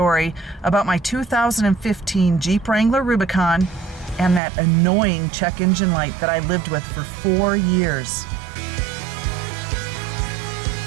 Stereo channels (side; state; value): left; drops out; at 4.4 s